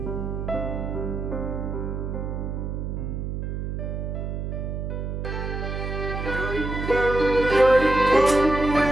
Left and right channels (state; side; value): noise; right; hum, 4 dB below the sound